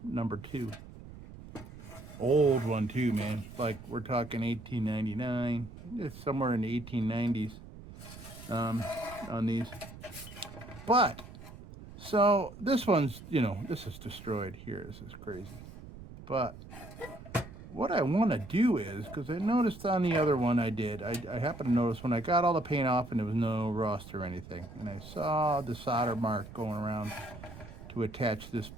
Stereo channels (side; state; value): right; noise; rumble, 15 dB below the sound